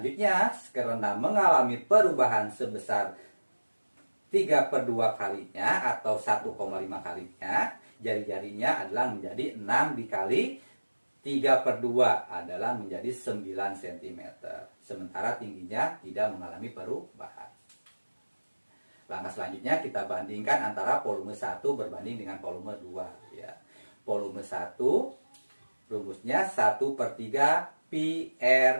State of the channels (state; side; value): inverted; both; correlation -1.00